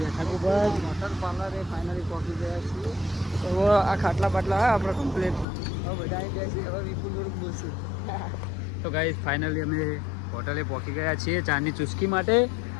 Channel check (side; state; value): right; drops out; at 5.5 s